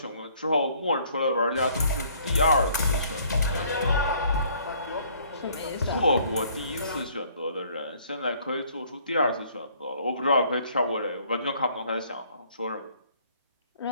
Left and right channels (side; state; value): both; inverted; correlation -0.60